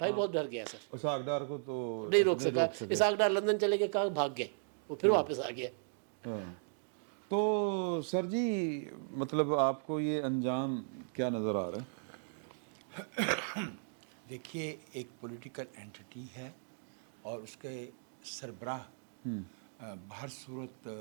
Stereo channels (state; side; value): silent; left; digital silence